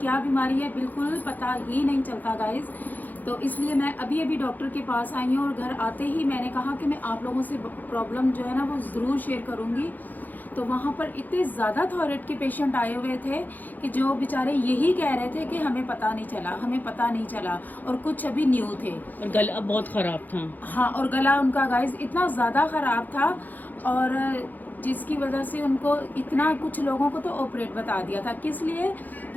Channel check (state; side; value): late; right; 0.084 ms